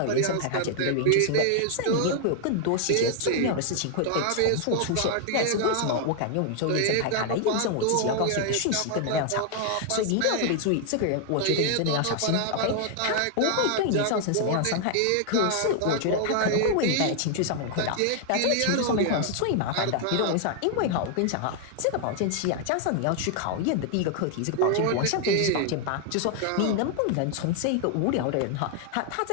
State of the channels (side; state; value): both; different; correlation 0.00